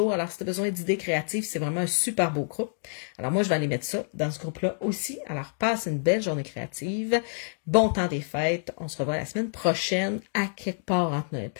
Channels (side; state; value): right; silent; digital silence